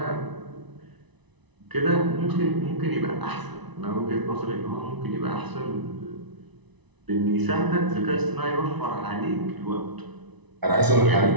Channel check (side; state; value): left; late; 1.0 ms